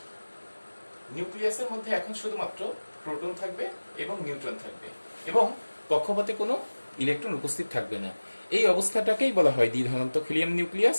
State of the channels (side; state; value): both; inverted; correlation -1.00